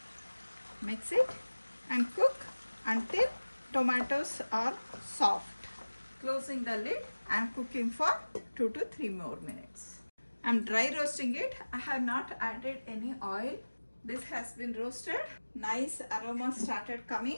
Mix it and cook until tomatoes are soft. Closing the lid and cooking for 2 to 3 more minutes. I'm dry roasting it. I have not added any oil. This has been roasted. Nice aroma started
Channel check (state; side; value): inverted; both; correlation -1.00